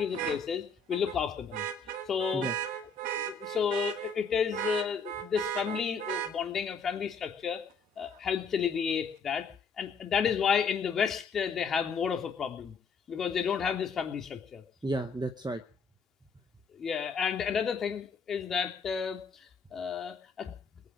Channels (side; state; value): right; quieter; 4.8 dB